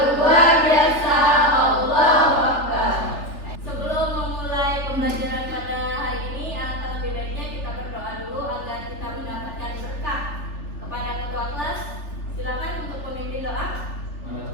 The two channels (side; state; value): right; late; 3.4 ms